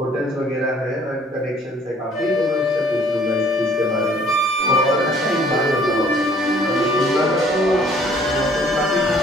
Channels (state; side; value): normal; both; correlation 0.58